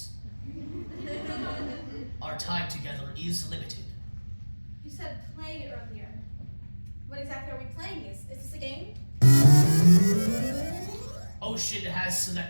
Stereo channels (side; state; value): both; inverted; correlation -1.00